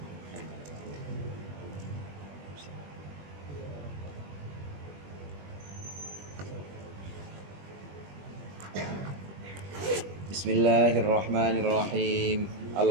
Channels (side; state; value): left; late; 21 ms